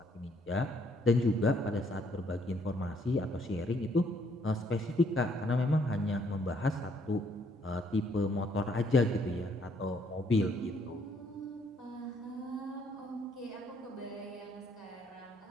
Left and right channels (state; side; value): normal; both; correlation 0.68